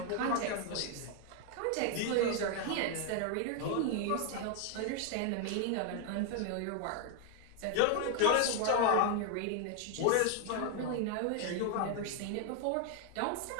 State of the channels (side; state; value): both; different; correlation 0.00